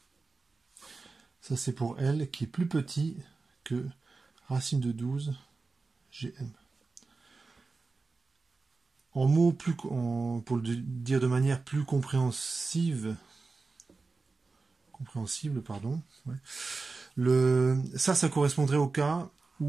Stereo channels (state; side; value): quieter; left; 4.0 dB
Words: Ça c'est pour L qui est plus petit que racine de 12 GM. En mots pour le dire de manière plus compréhensible, pardon. Ouais. Ça correspondrait au cas